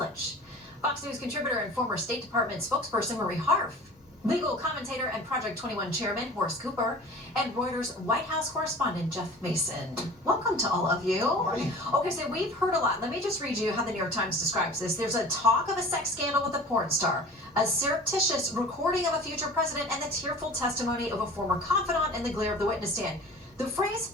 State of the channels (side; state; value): both; normal; correlation 0.42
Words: Fox News contributor and former State Department spokesperson Marie Harf, legal commentator and Project 21 chairman Horace Cooper, and Reuters White House correspondent Jeff Mason. Welcome to all of you. Morning. Okay, so we've heard a lot. Let me just read you how the New York Times describes this. There's a talk of a sex scandal with a porn star, a surreptitious recording of a future president, and the tearful testimony of a former confidant in the glare of the witness stand. The phrase